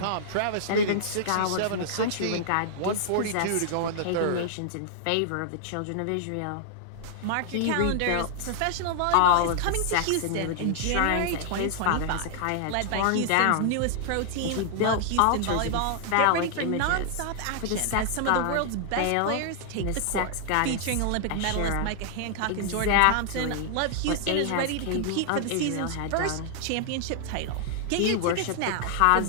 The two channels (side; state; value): both; different; correlation -0.01